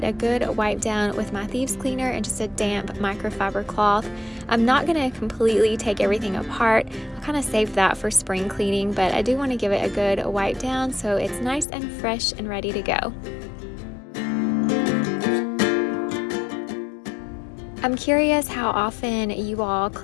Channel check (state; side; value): drops out; right; at 11.7 s